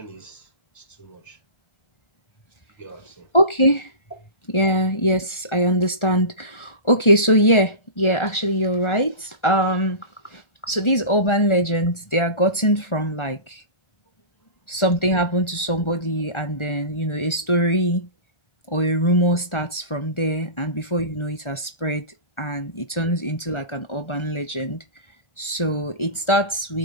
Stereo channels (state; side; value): late; right; 1.4 ms